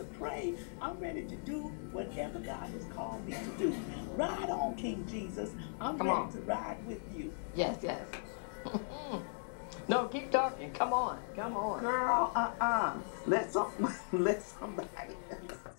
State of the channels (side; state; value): right; silent; digital silence